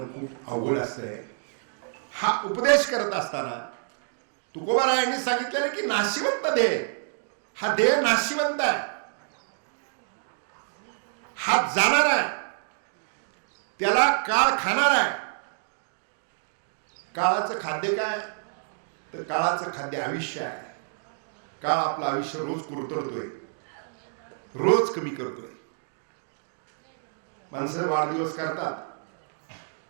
खूप अवघड असतंय. हा उपदेश करत असताना तुकोबारायांनी सांगितलं की नाशिवंत देह, हा देह नाशिवंत आहे, हा जाणार आहे, त्याला काळ खाणार आहे. काळाचं खाद्य काय? तर काळाचं खाद्य आयुष्य आहे. काळ आपलं आयुष्य रोज कुरतडतोय, रोज कमी करतोय. माणसं वाढदिवस करतात,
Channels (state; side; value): silent; left; digital silence